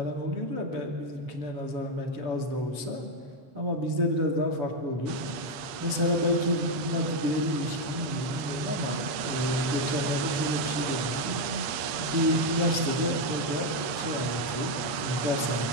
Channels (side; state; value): left; late; 8.4 ms